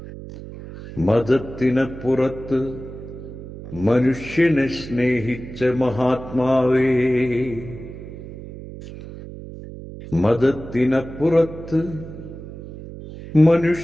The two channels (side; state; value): right; noise; hum, 13 dB below the sound